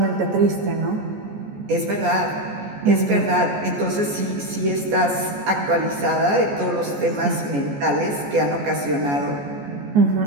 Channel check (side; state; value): left; late; 14 ms